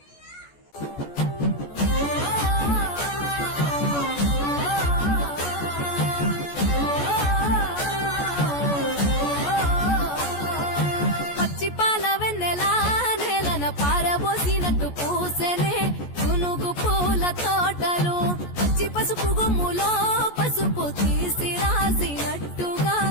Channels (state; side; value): late; right; 14 ms